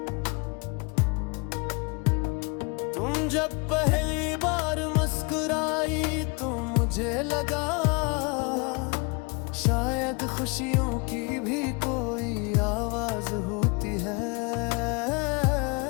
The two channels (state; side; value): quieter; right; 30.4 dB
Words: तुम जब पहली बार मुस्कुराई तो मुझे लगा शायद खुशियों की भी कोई आवाज होती है।